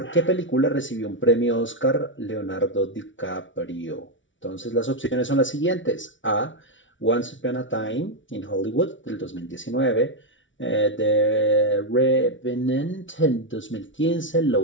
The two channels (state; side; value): late; right; 0.56 ms